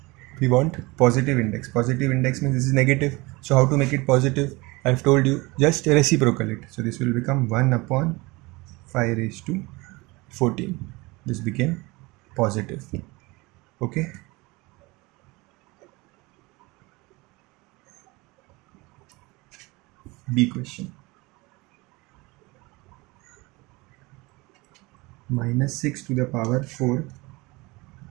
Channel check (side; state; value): left; quieter; 23.6 dB